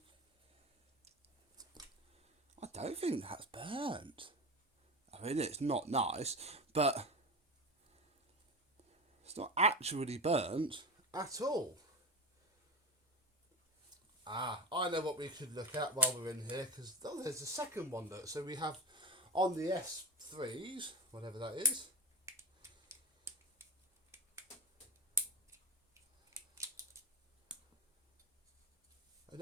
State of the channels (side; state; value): both; normal; correlation 0.23